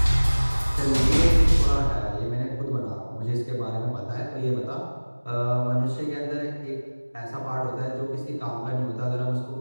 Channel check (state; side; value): inverted; both; correlation -1.00